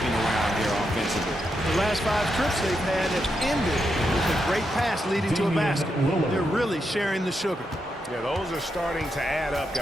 around here offensively. The last 5 trips they've had have ended with a great pass leading to a basket. They're really sharing the sugar. Yeah, those are starting to add up,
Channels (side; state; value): both; normal; correlation 0.84